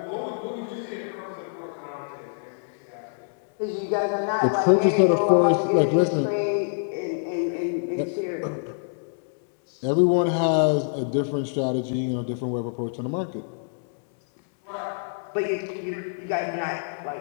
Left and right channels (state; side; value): silent; right; digital silence